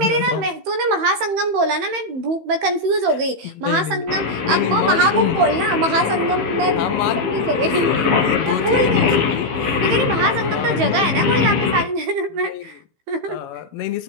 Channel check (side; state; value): left; late; 15 ms